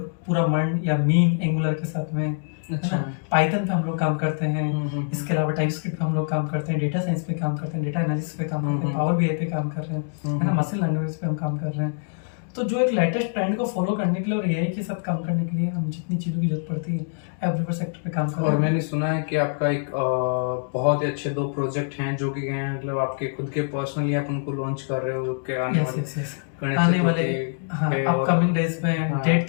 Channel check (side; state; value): right; silent; digital silence